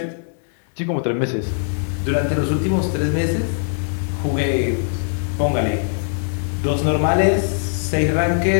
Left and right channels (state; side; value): silent; right; 64 dB below the other